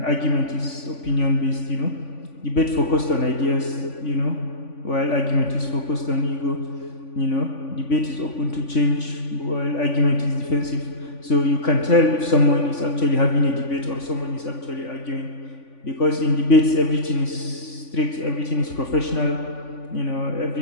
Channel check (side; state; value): right; late; 3.5 ms